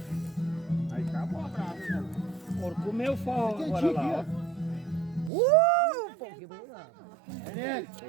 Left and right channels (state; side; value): drops out; left; at 5.3 s